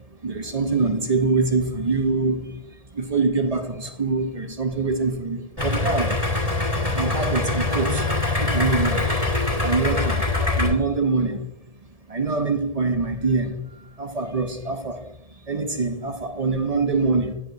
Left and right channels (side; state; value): left; late; 1.7 ms